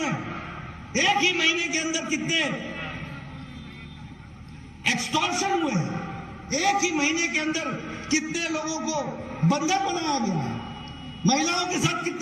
एक ही महीने के अंदर कितने एक्सटॉर्शन हुए हैं, एक ही महीने के अंदर कितने लोगों को बंधक बनाया गया है, महिलाओं के साथ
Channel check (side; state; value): both; identical; correlation 1.00